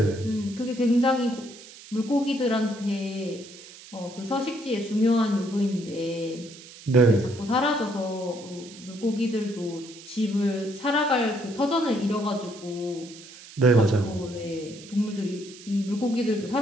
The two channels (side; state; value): right; noise; hiss, 18 dB below the sound